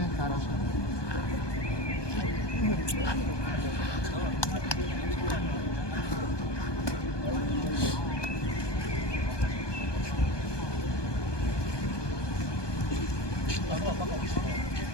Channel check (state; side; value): late; right; 1.2 ms